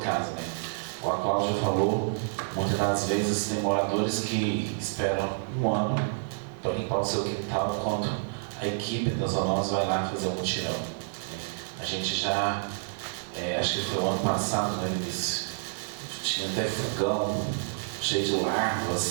né. Como a Cláudia falou, muitas das vezes tem moradores que esperam 1 ano para limpar o seu quintal, enquanto a equipe das zoonoses vai lá fazer um mutirão. A gente já, acho que foi o ano passado, né, Vinícius, tinha até fogão cheio de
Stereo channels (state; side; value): silent; left; digital silence